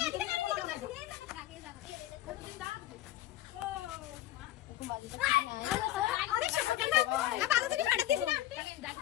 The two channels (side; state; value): right; quieter; 14.3 dB